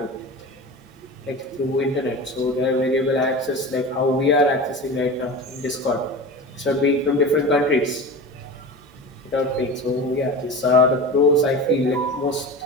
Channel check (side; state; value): both; normal; correlation 0.31